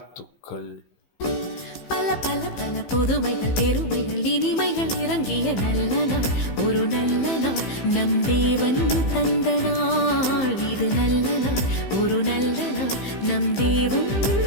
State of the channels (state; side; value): late; right; 15 ms